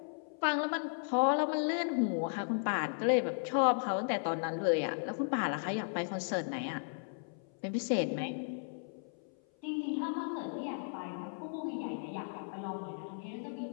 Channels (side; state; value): right; silent; 54 dB below the other